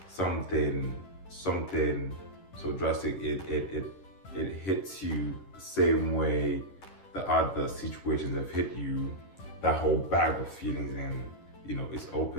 something so drastic, it hits you the same way the other situations have hit you, that whole bag of feelings, and you know, it's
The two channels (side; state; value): right; late; 11 ms